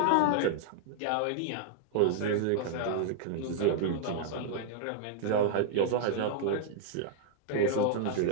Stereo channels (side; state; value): both; different; correlation -0.01